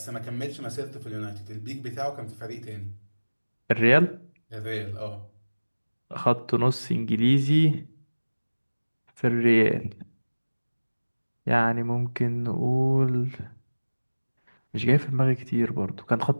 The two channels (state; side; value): inverted; both; correlation -1.00